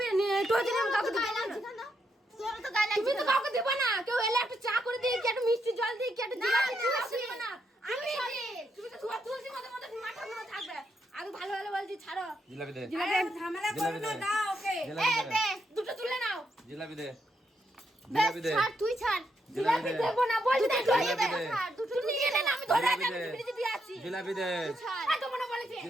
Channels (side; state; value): both; normal; correlation 0.79